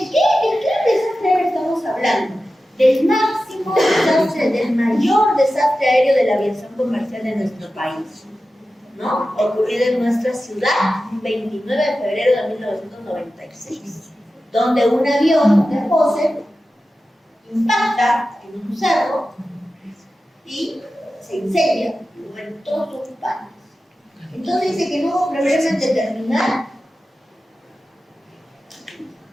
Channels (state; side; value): normal; both; correlation 0.93